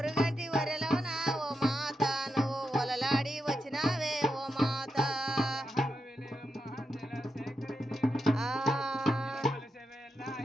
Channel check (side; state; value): both; normal; correlation 0.86